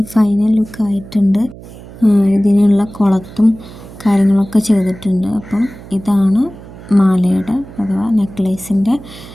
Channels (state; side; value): noise; right; hum, 17 dB below the sound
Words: ഫൈനൽ ലുക്ക് ആയിട്ടുണ്ട്. ഇതിനുള്ള കുളത്തും കാര്യങ്ങളൊക്കെ ചെയ്തിട്ടുണ്ട്. അപ്പോൾ ഇതാണ് മാലയുടെ അഥവാ നെക്ലേസിൻ്റെ